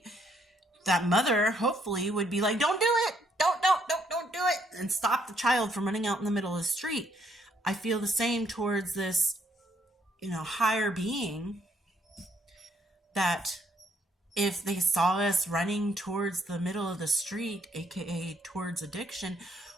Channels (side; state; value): both; normal; correlation 0.69